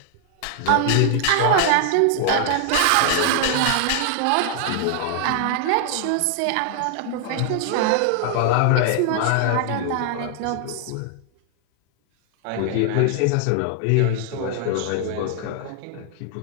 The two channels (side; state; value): both; different; correlation 0.00